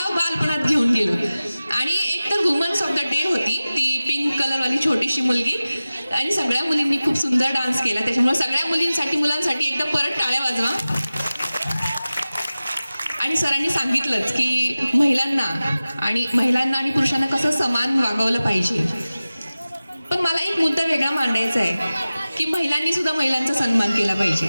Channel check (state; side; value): inverted; both; correlation -0.97